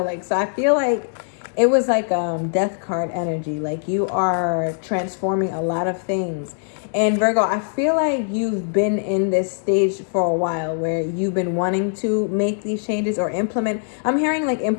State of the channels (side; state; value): right; silent; digital silence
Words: Like, so I feel like it was like death card energy. Like you are transforming a lot of things. And Virgo, I feel like you've been in this stage for a while where you've been wanting to make these changes or implement. I'm hearing like